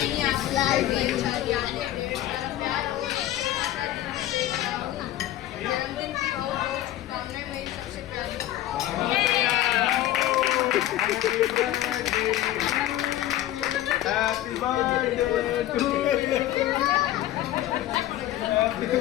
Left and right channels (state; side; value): quieter; right; 13.9 dB